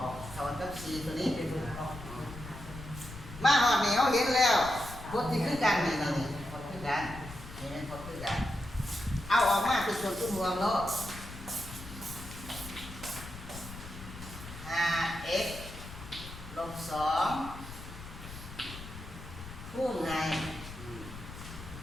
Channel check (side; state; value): left; noise; rumble, 13 dB below the sound